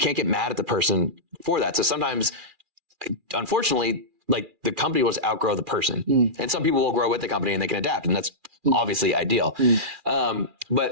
get mad at the person for that. So sometimes, unfortunately, like, the company will outgrow the person, and some people will grow with the company and they can adapt, and that's obviously ideal.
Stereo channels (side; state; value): left; late; 2.4 ms